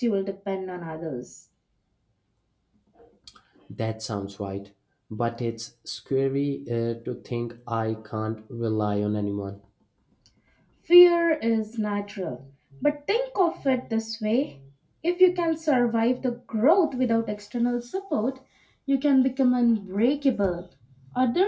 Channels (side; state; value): both; identical; correlation 1.00